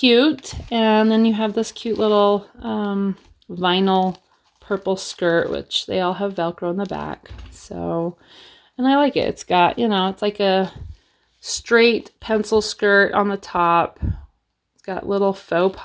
And then you have this cute little vinyl purple skirt, which they all have Velcro in the back. So, and I like it. It's got, you know, it's like a straight pencil skirt on the top. It's got little faux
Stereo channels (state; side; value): identical; both; correlation 1.00